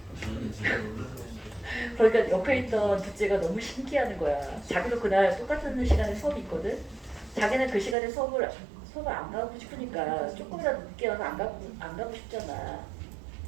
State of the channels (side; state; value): left; drops out; at 8.0 s